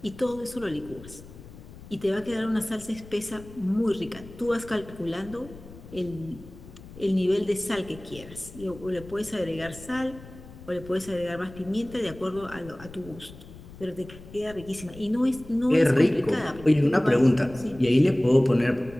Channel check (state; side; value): noise; left; rumble, 17 dB below the sound